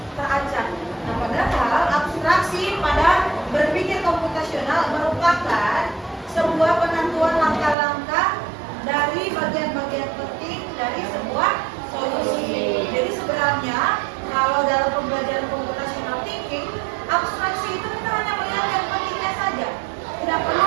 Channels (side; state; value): left; drops out; at 7.8 s